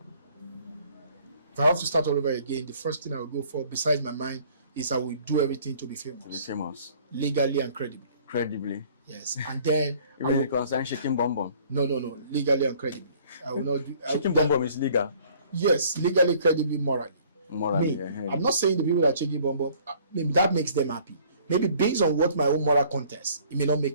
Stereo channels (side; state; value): both; inverted; correlation -0.56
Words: If I have to start all over again, the first thing I will go for, besides my mind, is I will do everything to be famous. To be famous. Legally and credibly. Credibly. Yes. And then you really concern shaking bomb bomb? No. Legally and credibly. I will not do shaking bomb bomb is legal. Yes, legally, credibly, morally. Morally. I'm not saying the people that are shaking bomb bomb, maybe that makes them happy. Maybe based on what my own moral contest, it may not